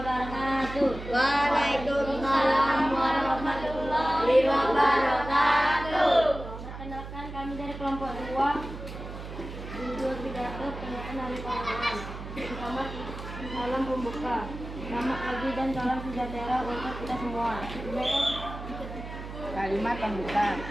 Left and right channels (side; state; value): right; noise; hum, 10 dB below the sound